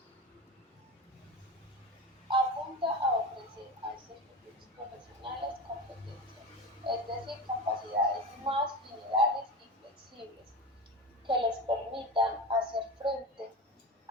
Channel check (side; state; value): both; normal; correlation 0.25